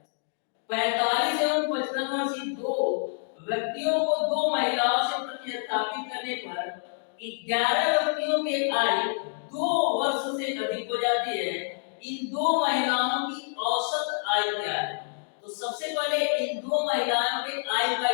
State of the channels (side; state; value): right; silent; digital silence